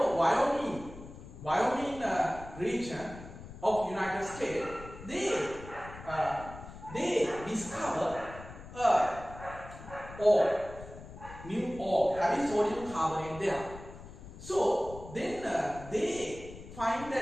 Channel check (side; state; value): left; noise; rumble, 15 dB below the sound